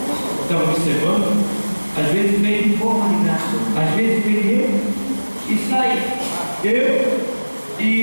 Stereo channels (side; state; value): both; inverted; correlation -1.00